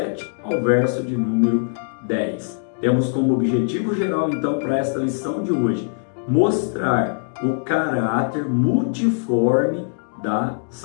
ao verso de número 10. Temos como objetivo geral, então, para esta lição de hoje, mostrar o caráter multiforme da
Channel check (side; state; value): right; silent; digital silence